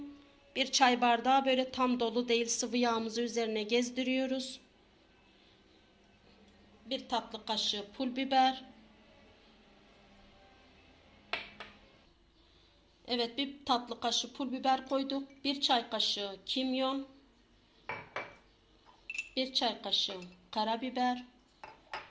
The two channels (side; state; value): both; identical; correlation 1.00